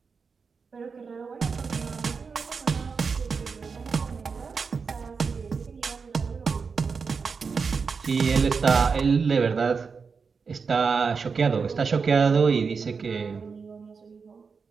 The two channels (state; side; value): quieter; left; 5.3 dB